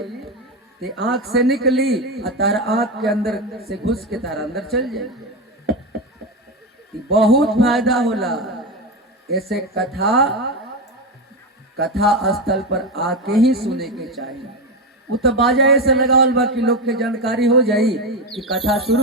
तो आंख से निकली आ तारा आंख के अंदर से घुस के तारा अंदर चल जाए। बहुत फायदा होला। ऐसे कथा स्थल पर आके ही सुने के चाहिए। वो तो बाजा ऐसे लगावल बा कि लोग के जानकारी हो जाई कि कथा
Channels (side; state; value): both; normal; correlation 0.14